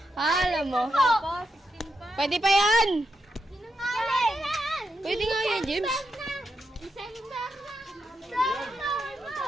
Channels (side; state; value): both; normal; correlation 0.84